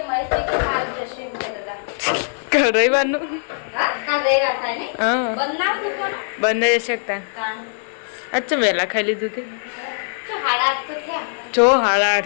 રવિવારનું હા બંધ જઈ શકતા અચ્છા વહેલા ખાઈ લીધું તે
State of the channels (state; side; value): silent; right; digital silence